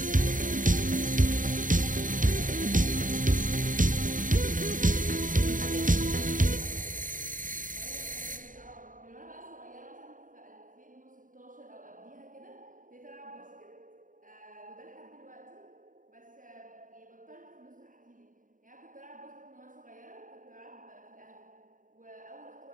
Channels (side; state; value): left; late; 0.39 ms